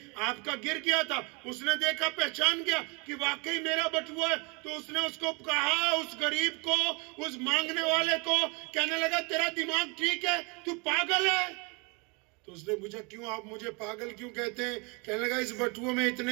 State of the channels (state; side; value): quieter; left; 30.6 dB